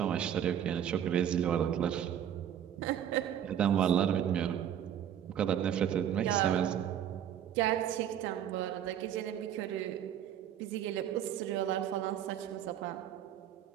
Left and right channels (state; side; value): quieter; left; 9.9 dB